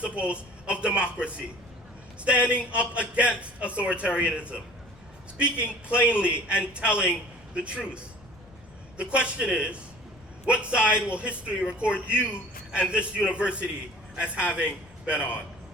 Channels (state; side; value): noise; left; rumble, 24 dB below the sound